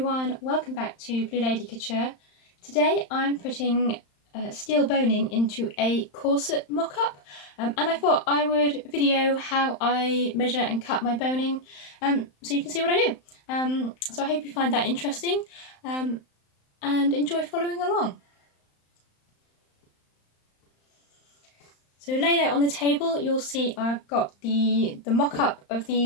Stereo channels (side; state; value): right; late; 35 ms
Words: welcome back to Blue Lady Couture. Today I'm putting steel boning into a corset mock-up, and I thought I would video how I measure and cut my boning so you can see what I do. So I hope you find that interesting and enjoy following along. So laid out on the table, you'll see I've got the mock-up of